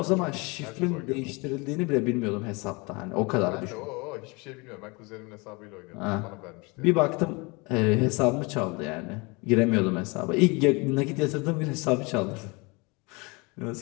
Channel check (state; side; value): quieter; right; 27.6 dB